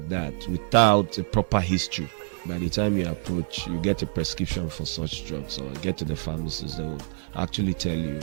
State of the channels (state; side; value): silent; left; 60 dB below the other